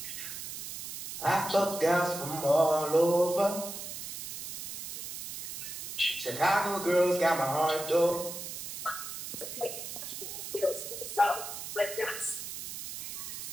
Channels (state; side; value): noise; right; hiss, 8 dB below the sound